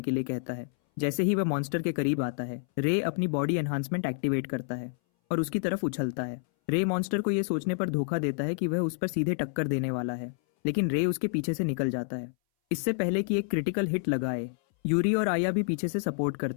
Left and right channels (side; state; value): right; silent; 59 dB below the other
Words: के लिए कहता है। जैसे ही वह मॉन्स्टर के करीब आता है, रे अपनी बॉडी एनहांसमेंट एक्टिवेट करता है और उसकी तरफ उछलता है। रे मॉन्स्टर को यह सोचने पर धोखा देता है कि वह उस पर सीधे टक्कर देने वाला है, लेकिन रे उसके पीछे से निकल जाता है। इससे पहले कि एक क्रिटिकल हिट लगाए, यूरी और आया भी पीछे से सपोर्ट